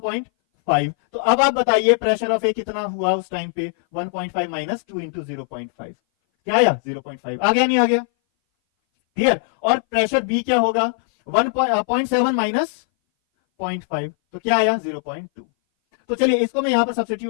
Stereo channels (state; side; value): silent; right; 60 dB below the other